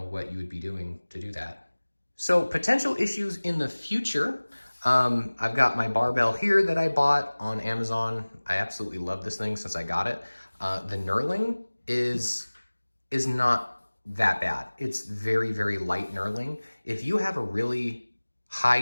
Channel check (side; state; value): both; inverted; correlation -1.00